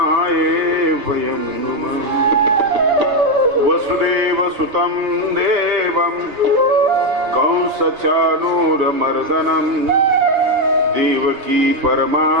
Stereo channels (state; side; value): late; left; 3.3 ms